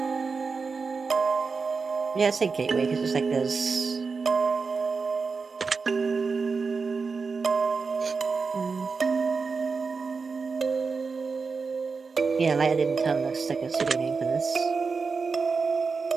Yeah, I'd say Gateway, because it's like there's... Yeah, Light didn't tell looks like a pseudo name for this.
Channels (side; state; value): left; quieter; 4.8 dB